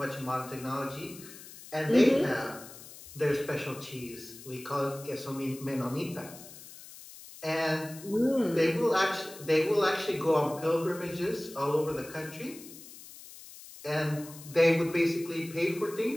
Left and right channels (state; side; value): noise; left; hiss, 17 dB below the sound